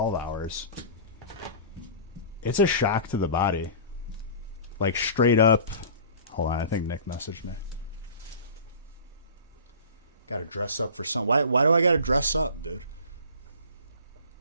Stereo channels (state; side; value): inverted; both; correlation -0.39